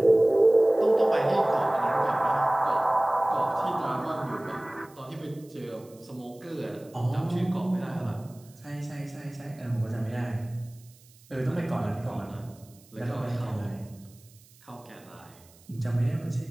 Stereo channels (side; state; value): right; noise; hiss, 27 dB below the sound